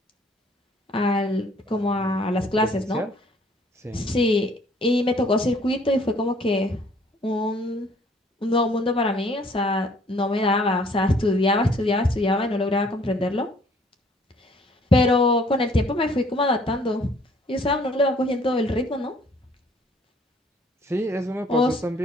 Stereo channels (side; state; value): both; normal; correlation 0.59